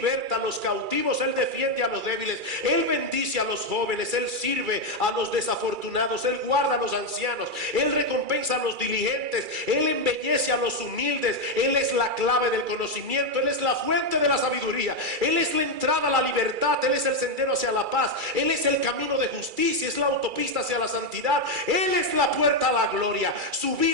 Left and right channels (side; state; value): left; late; 2.3 ms